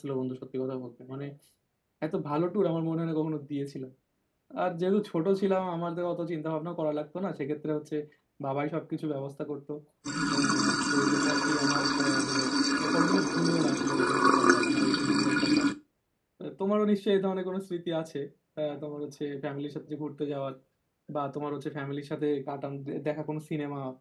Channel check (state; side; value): identical; both; correlation 1.00